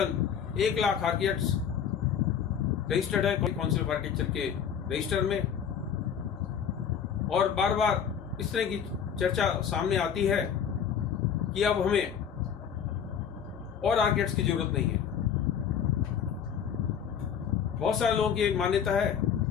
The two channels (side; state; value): right; quieter; 8.0 dB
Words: 1 लाख आर्किटेक्ट्स रजिस्टर्ड है काउंसिल ऑफ आर्किटेक्चर के रजिस्टर में, और बार बार इस तरह की चर्चा सामने आती है कि अब हमें और आर्किटेक्ट्स की जरूरत नहीं है। बहुत सारे लोगों की एक मान्यता है